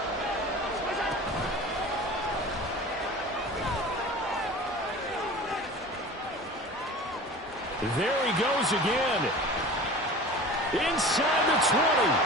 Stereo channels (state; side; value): normal; both; correlation 0.38